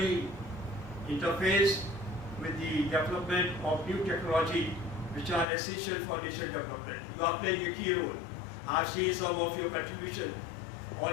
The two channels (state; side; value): drops out; right; at 5.5 s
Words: interfaced with the development of new technology which are essential for nation development. You are playing a key role. I've seen some of your contribution.